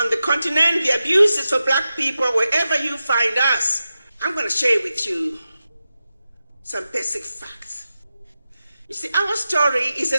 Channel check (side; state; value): both; inverted; correlation -0.92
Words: the continent. The abuse is for Black people wherever you find us. I'm going to share with you some basic facts. You see, our story is a